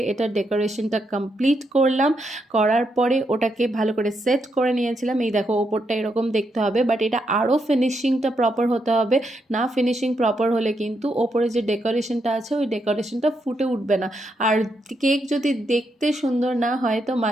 এটা ডেকোরেশনটা কমপ্লিট করলাম, করার পরে ওটাকে ভালো করে সেট করে নিয়েছিলাম। এই দেখো ওপরটা এরকম দেখতে হবে, বাট এটা আরও ফিনিশিংটা প্রপার হতে হবে, না ফিনিশিং প্রপার হলে কিন্তু ওপরে যে ডেকোরেশনটা আছে ওই ডেকোরেশনটা ফুটে উঠবে না। আর কেক যদি দেখতে সুন্দর না হয় তো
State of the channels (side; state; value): both; normal; correlation 0.80